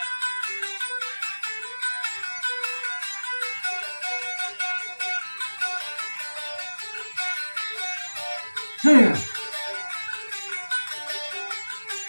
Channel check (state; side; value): inverted; both; correlation -1.00